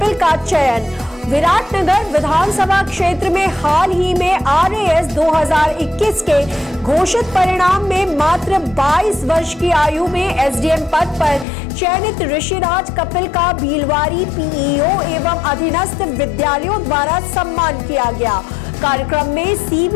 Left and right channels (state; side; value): drops out; right; at 11.5 s